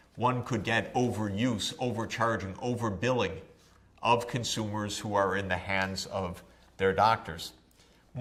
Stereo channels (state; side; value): identical; both; correlation 1.00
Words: one could get overuse, overcharging, overbilling of consumers who are in the hands of their doctors.